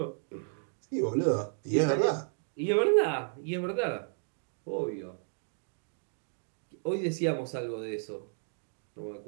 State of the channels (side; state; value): left; silent; digital silence